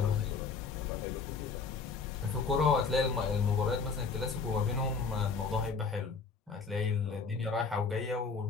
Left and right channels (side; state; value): right; quieter; 5.0 dB